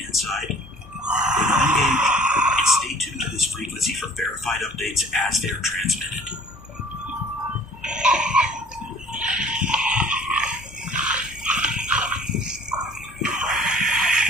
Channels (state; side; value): normal; both; correlation 0.51